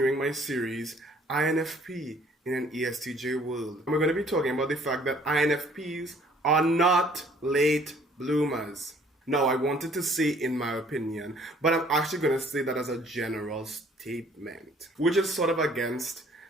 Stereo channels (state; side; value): normal; both; correlation 0.58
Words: my series INFP in an ESTJ world. And we're going to be talking about the fact that INFPs are not late bloomers. Now, I wanted to say in my opinion, but I'm actually going to say that as a general statement, which is sort of against